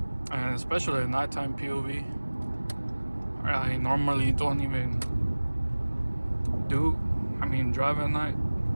And especially a nighttime POV. I normally don't even drive at night.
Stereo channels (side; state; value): both; inverted; correlation -1.00